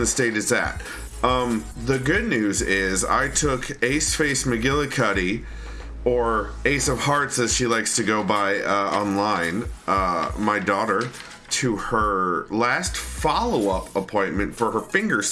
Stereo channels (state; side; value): identical; both; correlation 1.00